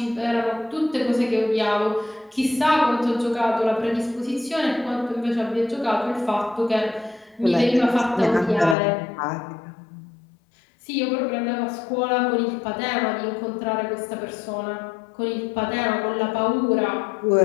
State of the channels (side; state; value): right; drops out; at 8.8 s